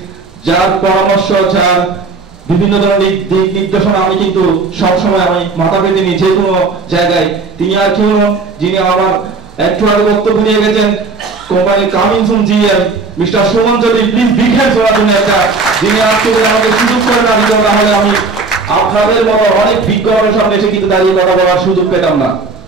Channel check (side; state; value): left; quieter; 4.1 dB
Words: যার পরামর্শ, যার বিভিন্ন ধরনের দিক নির্দেশনা আমি কিন্তু সবসময় আমি মাথা পেতে নিই যে কোনো জায়গায়। তিনি আর কেউ নন, যিনি আমার একটু আগে বক্তব্য নিয়ে গেছেন company coming soon GM mister Suman Chowdhury. Please big hands ওনার জন্য একটা, যিনি আজকে আমাকে সুযোগ করে না দিত, তাহলে আমি আপনাদের মতো অনেক বিজ্ঞানের সামনে এসে কিন্তু দাঁড়িয়ে কথা বলার সুযোগ পেতাম না।